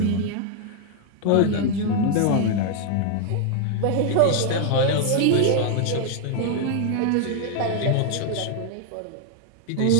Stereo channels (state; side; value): different; both; correlation 0.00